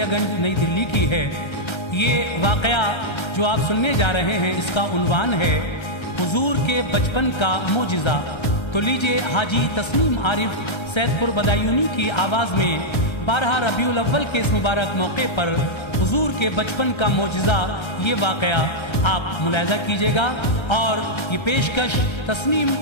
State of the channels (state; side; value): late; right; 1.3 ms